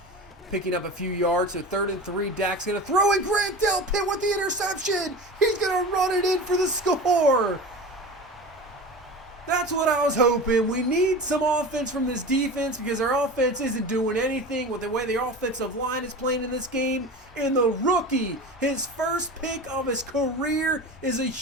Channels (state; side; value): normal; both; correlation 0.31